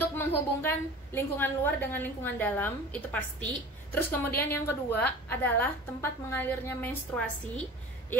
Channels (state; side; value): normal; both; correlation 0.38